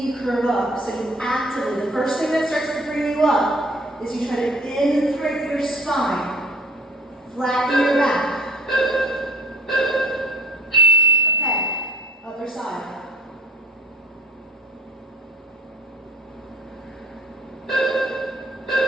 curve up. So you actively, the first thing that starts to bring you up is you try to imprint your spine. Flatten your back. Okay, other side.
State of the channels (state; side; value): normal; both; correlation 0.50